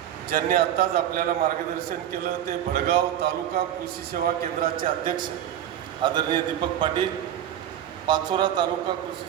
ज्यांनी आत्ताच आपल्याला मार्गदर्शन केलं ते भडगाव तालुका कृषी सेवा केंद्राचे अध्यक्ष आदरणीय दीपक पाटील, पाचोरा तालुका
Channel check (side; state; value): left; quieter; 10.9 dB